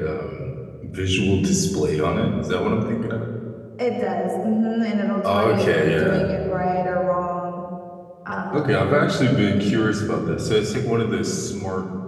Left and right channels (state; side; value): identical; both; correlation 1.00